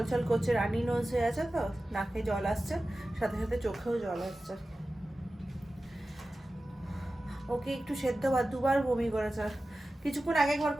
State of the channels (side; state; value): both; normal; correlation 0.95